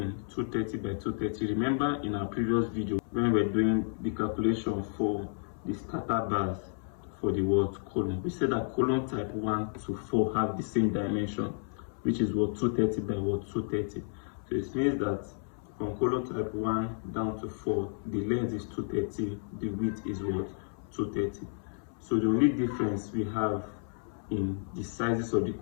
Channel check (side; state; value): right; silent; 57 dB below the other